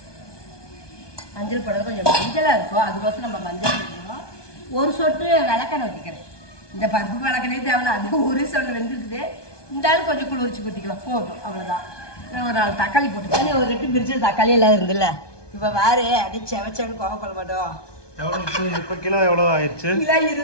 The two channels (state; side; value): late; right; 1.2 ms